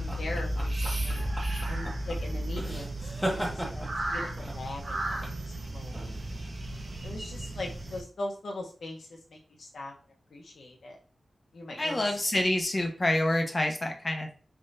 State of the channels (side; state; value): both; normal; correlation 0.95